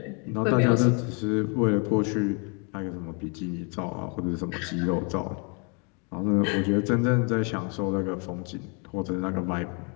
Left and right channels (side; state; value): right; quieter; 35.3 dB